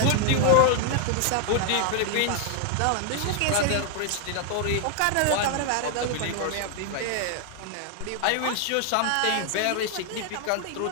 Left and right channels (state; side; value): different; both; correlation 0.00